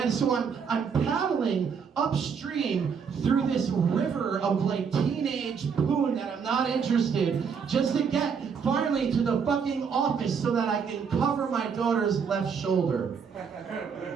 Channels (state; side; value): quieter; left; 6.4 dB